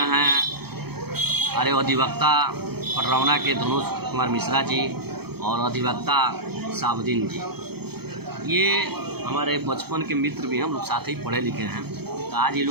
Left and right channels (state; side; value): late; left; 0.97 ms